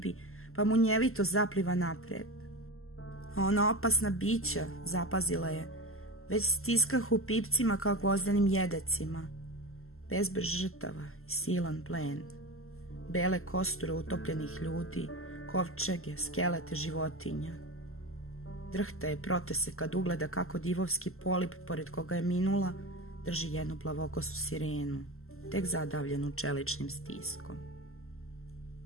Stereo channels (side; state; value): right; late; 0.62 ms